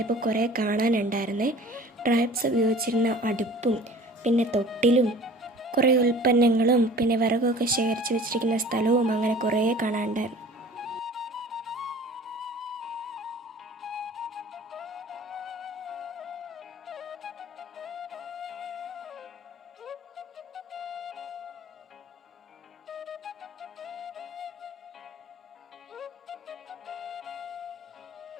കുറേ കാണാനുണ്ടായിരുന്നേ. ട്രൈബ്സ് ഉപയോഗിച്ചിരുന്ന അടുപ്പും പിന്നെ തൊട്ടിലും കുറേ ഉൽപ്പന്നങ്ങളും പിന്നെ വിറകൊക്കെ ശേഖരിച്ച് വെച്ചിരിക്കുന്ന സ്ഥലവും അങ്ങനെ കുറേ കാണാനുണ്ടായിരുന്നു.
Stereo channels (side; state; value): both; normal; correlation 0.45